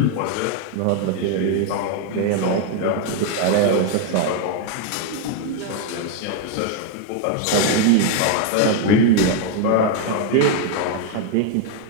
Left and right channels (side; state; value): both; different; correlation 0.01